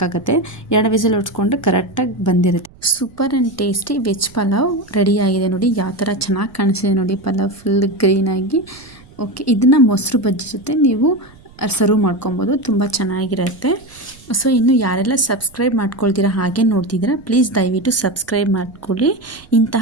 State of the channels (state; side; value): noise; right; rumble, 25 dB below the sound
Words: 2 ವಿಸಿಲ್ ಹೊಡ್ಸ್ಕೊಂಡ್ರೆ ಕರೆಕ್ಟಾಗಿ ಬಂದಿರುತ್ತೆ. Super and tasty veg pulao ರೆಡಿಯಾಗಿದೆ. ನೋಡಿ ಯಾವ ಥರ ಚೆನ್ನಾಗಿ ಕಾಣಿಸಿದೆ ನೋಡಿ, ಪಲಾವ್ ಫುಲ್ ಗ್ರೀನಾಗಿ. ಓಕೆ, ಇದನ್ನು ಮೊಸರು ಬಜ್ಜಿ ಜೊತೆ ನೀವು ಸರ್ವ್ ಮಾಡ್ಕೊಬೋದು, ತುಂಬ ಚೆನ್ನಾಗಿರುತ್ತೆ. ಸೊ ಇನ್ನು ಯಾರೆಲ್ಲ ಸಬ್ಸ್ಕ್ರೈಬ್ ಮಾಡ್ಕೊಳ್ತೀರಾ ಹಾಗೆ ನೋಡ್ತಿದ್ದೀರಾ, ಪ್ಲೀಸ್ ದಯವಿಟ್ಟು ಸಬ್ಸ್ಕ್ರೈಬ್ ಮಾಡ್ಕೊಳ್ಳಿ.